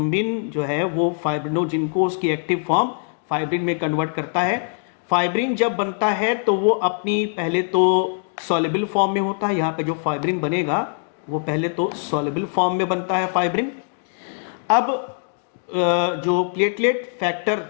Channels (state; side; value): silent; right; digital silence